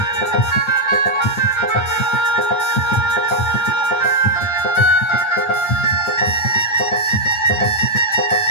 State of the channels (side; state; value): right; late; 9.4 ms